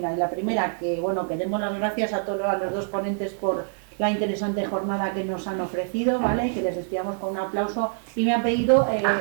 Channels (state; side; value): silent; left; digital silence